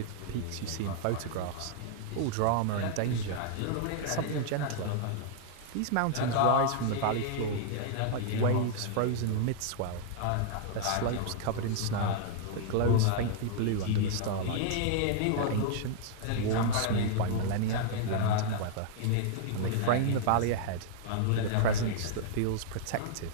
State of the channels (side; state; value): both; different; correlation -0.01